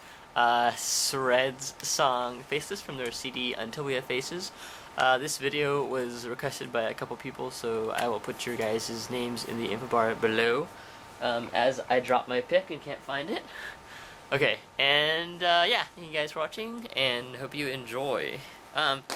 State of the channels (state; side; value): identical; both; correlation 1.00